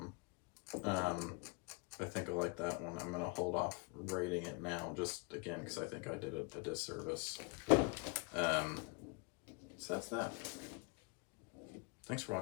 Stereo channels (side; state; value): right; quieter; 27.8 dB